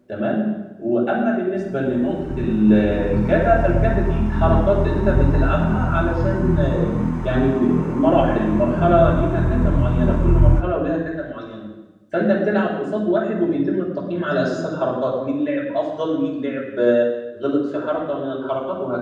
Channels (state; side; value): identical; both; correlation 1.00